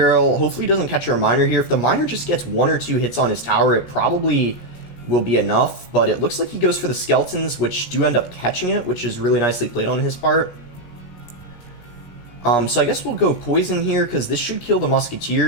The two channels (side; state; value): right; late; 17 ms